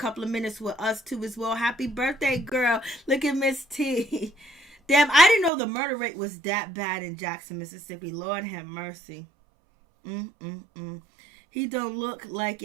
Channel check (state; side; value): drops out; left; at 5.5 s